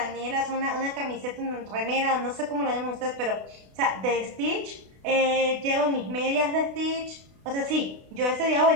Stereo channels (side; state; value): left; late; 32 ms